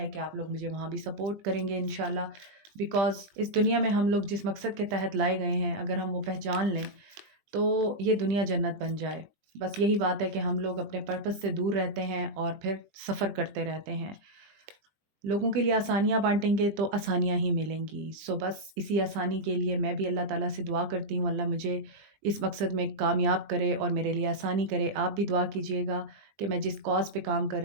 कि आप लोग मुझे वहाँ भी सपोर्ट करेंगे इंशाल्लाह, बिकॉज़ इस दुनिया में हम लोग जिस मकसद के तहत लाए गए हैं, अगर हम वो पहचान लें तो ये दुनिया जन्नत बन जाए। बस यही बात है कि हम लोग अपने पर्पस से दूर रहते हैं और फिर सफ़र करते रहते हैं। लोगों के लिए आसानियाँ बाँटेंगे तो आसानियाँ ही मिलेंगी। सो बस इसी आसानी के लिए मैं भी अल्लाह ताला से दुआ करती हूँ, अल्लाह मुझे इस मकसद में कामयाब करे और मेरे लिए आसानी करे। आप भी दुआ कीजिएगा कि मैं जिस कॉज़ पे काम कर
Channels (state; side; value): late; left; 20 ms